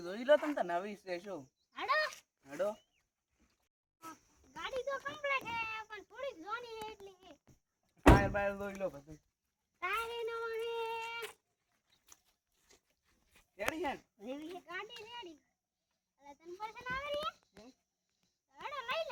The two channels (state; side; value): identical; both; correlation 1.00